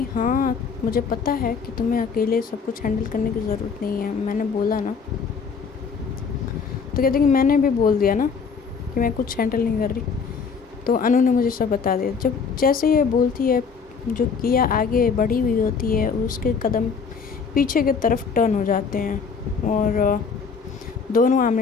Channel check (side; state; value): right; quieter; 5.7 dB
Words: हाँ मुझे पता है कि तुम्हें अकेले सब कुछ हैंडल करने की ज़रूरत नहीं है, मैंने बोला ना। तो कहती है कि मैंने भी बोल दिया ना कि मैं कुछ हैंडल नहीं कर रही। तो अनु ने मुझे सब बता दिया। जब जैसे ये बोलती है, जो किया आगे बढ़ी हुई होती है, उसके कदम पीछे की तरफ टर्न हो जाते हैं और दोनों